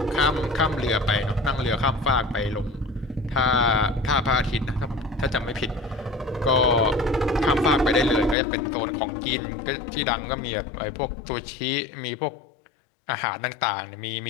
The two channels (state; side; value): drops out; right; at 8.3 s